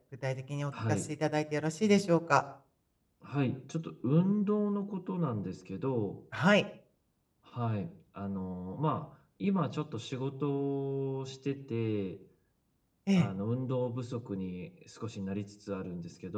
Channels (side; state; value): both; identical; correlation 1.00